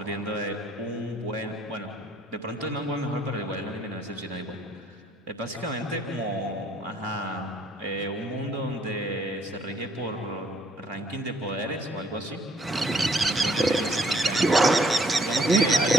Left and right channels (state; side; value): normal; both; correlation 0.64